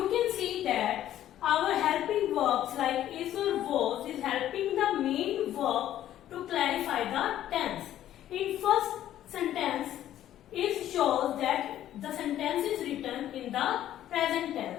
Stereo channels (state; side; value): quieter; right; 12.2 dB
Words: can see that our helping verbs like is or was is helping the main verb to clarify the tense. In first sentence, is shows that the sentence is written in the present